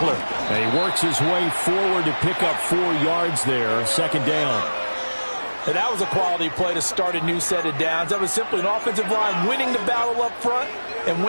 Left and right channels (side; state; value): both; inverted; correlation -1.00